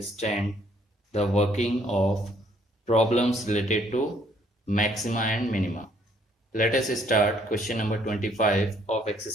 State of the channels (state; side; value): normal; both; correlation 0.65